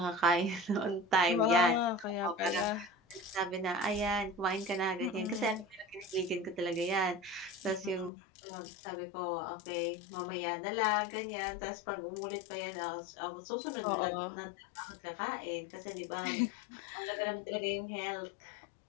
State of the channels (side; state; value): right; drops out; at 8.1 s